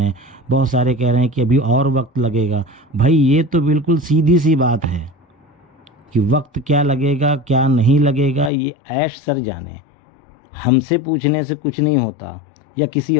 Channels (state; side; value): drops out; right; at 8.5 s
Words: हैं, बहुत सारे कह रहे हैं कि अभी और वक्त लगेगा। भाई ये तो बिल्कुल सीधी सी बात है कि वक्त क्या लगेगा क्या नहीं लगेगा ये ऐश सर जाने। हमसे पूछने से कुछ नहीं होता, या किसी